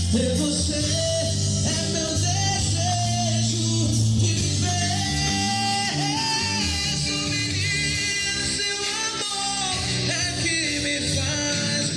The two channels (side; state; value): both; identical; correlation 1.00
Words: ter você é meu desejo de viver. Sou menino, seu amor é que me faz